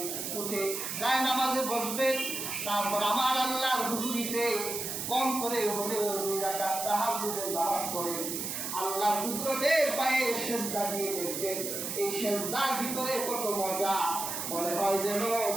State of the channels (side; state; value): right; noise; hiss, 4 dB below the sound